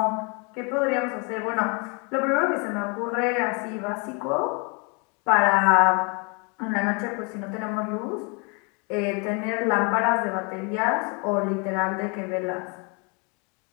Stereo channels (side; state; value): right; quieter; 32.4 dB